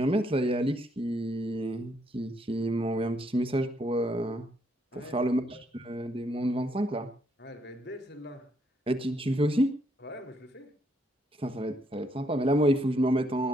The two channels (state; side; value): normal; both; correlation 0.73